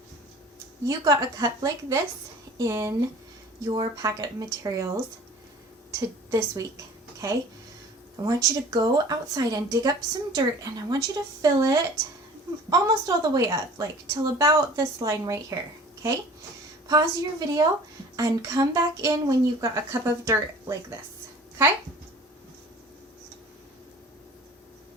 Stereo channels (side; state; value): both; normal; correlation 0.45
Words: you got a cup like this in your packet of materials to this week, okay? I want you to go outside and dig up some dirt, and I want you to fill it almost all the way up, like till about this line right here, okay? Pause your video and come back in when you've got a cup of dirt like this, okay?